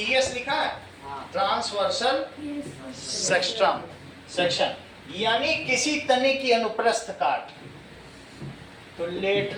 लिखा है, ट्रांसवर्सल सेक्शन, यानी किसी तने की अनुप्रस्थ काट। तो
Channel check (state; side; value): identical; both; correlation 1.00